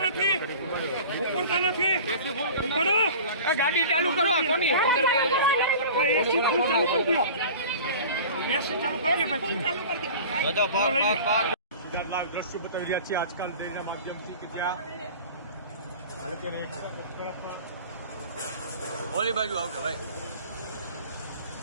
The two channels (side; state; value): both; inverted; correlation -0.40